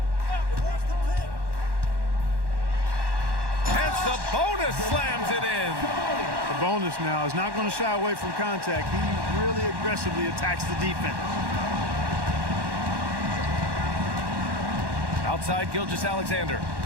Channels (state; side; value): late; left; 1.1 ms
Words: And Sabonis slams it in. Sabonis now is not going to shy away from contact. He really aggressively attacks the defense. Outside Gilgeous-Alexander.